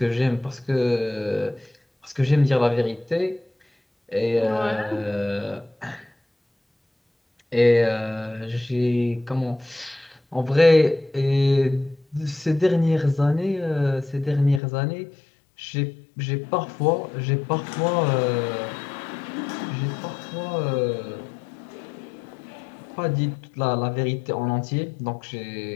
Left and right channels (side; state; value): right; drops out; at 14.6 s